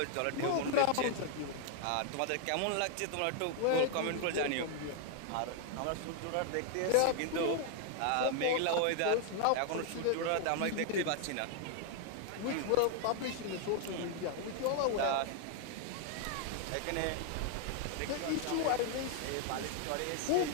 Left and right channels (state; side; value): different; both; correlation 0.00